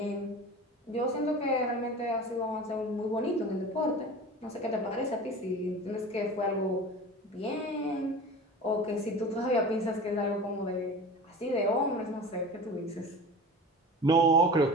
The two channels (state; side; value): normal; both; correlation 0.35